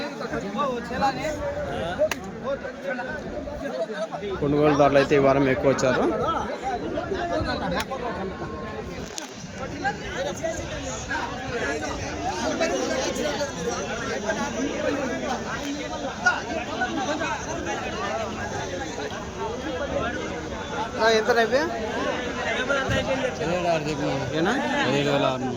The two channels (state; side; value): identical; both; correlation 1.00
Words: కొనుగోలుదారులు అయితే ఈ వారం ఎక్కువ వచ్చారు. ఎంత రేపే?